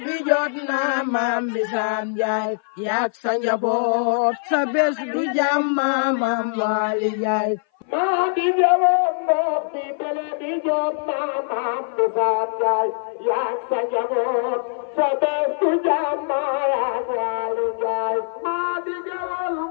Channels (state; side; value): silent; right; 57 dB below the other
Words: bi jot na maam Bisaan Njaay yak sa njaboot sa bés du jàmma maam Waali Njaay maa dige woon ngoox mi dele bi jot na maam Bisaan Njaay yak sa njaboot sa bés du jàmma yak Waali Njaay maa dige woon